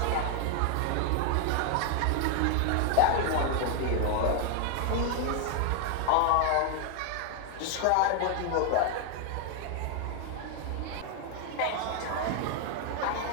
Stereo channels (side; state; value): both; different; correlation 0.00